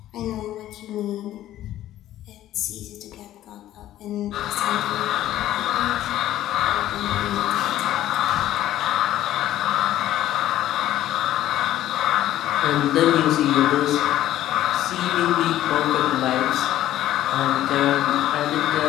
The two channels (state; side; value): quieter; right; 13.3 dB